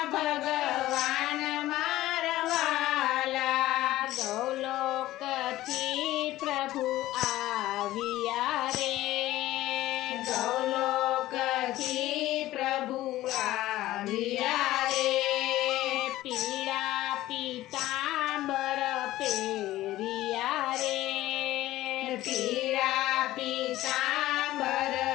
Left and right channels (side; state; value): right; quieter; 15.7 dB